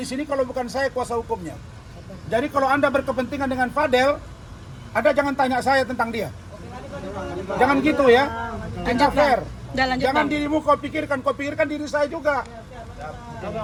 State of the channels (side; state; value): both; identical; correlation 1.00